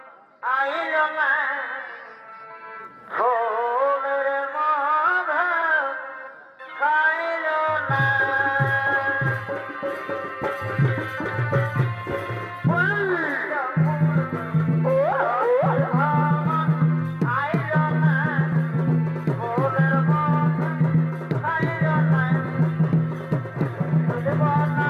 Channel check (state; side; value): identical; both; correlation 1.00